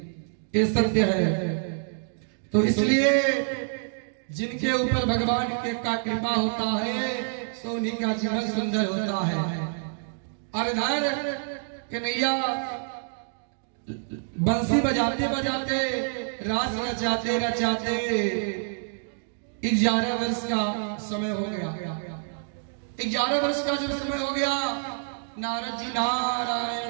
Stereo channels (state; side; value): silent; left; digital silence